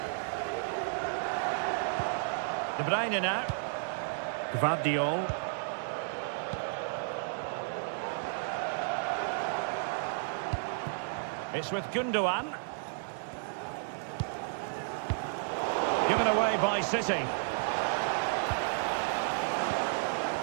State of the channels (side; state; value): left; silent; digital silence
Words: De Bruyne now. Gvardiol. It's with Gundogan. Given away by City.